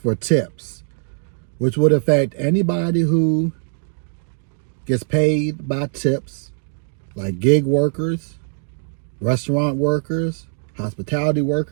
tips, which would affect anybody who gets paid by tips, like gig workers, restaurant workers, hospitality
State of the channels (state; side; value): silent; left; digital silence